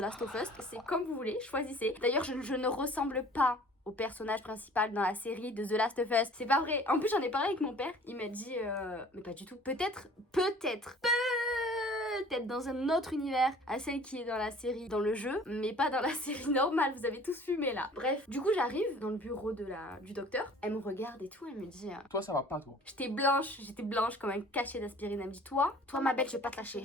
of Us. C'est comme vous voulez, choisissez. D'ailleurs, je ne ressemble pas au personnage principal dans la série de The Last of Us. C'est pas vrai. En plus, j'en ai parlé avec mon père. Il m'a dit, mais pas du tout. Peut-être dans un autre univers à celle qui est dans la série, dans le jeu, mais pas dans la série normale. Vous avez tous fumé là. Bref, du coup, j'arrive dans le bureau du docteur. Elle me regarde et tout. Elle me dit, Toi, ça va pas, toi. j'étais blanche comme un cachet d'aspirine. Elle me dit, toi ma belle, je vais pas te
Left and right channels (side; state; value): both; normal; correlation 0.49